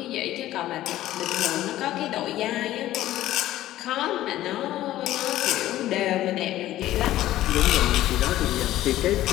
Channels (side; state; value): right; quieter; 14.3 dB